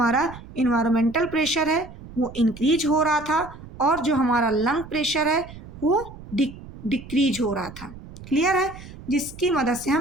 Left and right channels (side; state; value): right; noise; rumble, 16 dB below the sound